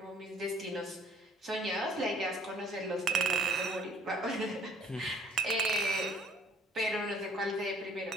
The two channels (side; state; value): both; normal; correlation 0.55